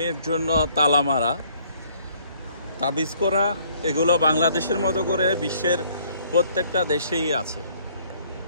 জন্য তালা মারা, তাবিজ করা, এগুলো বাংলাদেশের মতো করে বিশ্বের প্রত্যেকটা দেশেই আছে।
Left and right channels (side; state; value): both; inverted; correlation -0.62